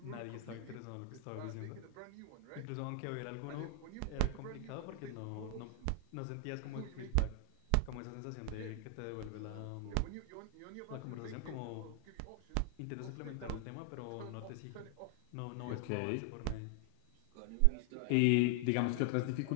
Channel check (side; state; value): both; different; correlation 0.00